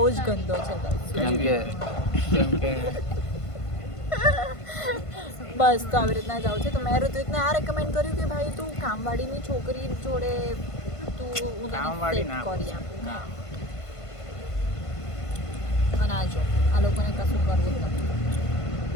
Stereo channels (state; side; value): late; right; 1.5 ms